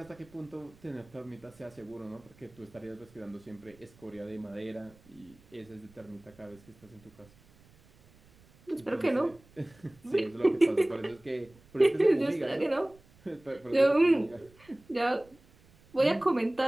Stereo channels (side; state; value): right; noise; rumble, 27 dB below the sound